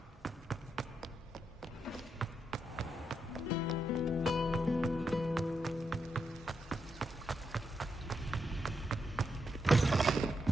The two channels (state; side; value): normal; both; correlation 0.82